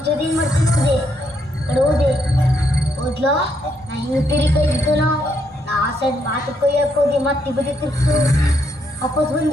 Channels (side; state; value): both; normal; correlation 0.75